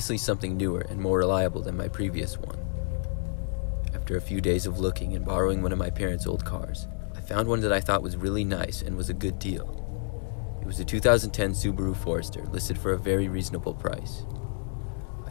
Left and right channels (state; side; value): silent; right; digital silence